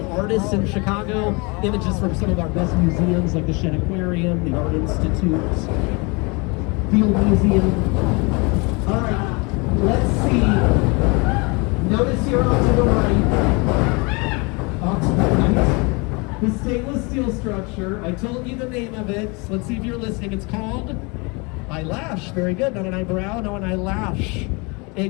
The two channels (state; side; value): quieter; right; 29.1 dB